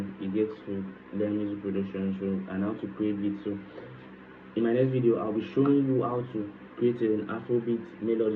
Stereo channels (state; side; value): identical; both; correlation 1.00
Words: you get to learn music production. So and how to create beats. So in my next video, I'll be showing you how to create an Afrobeat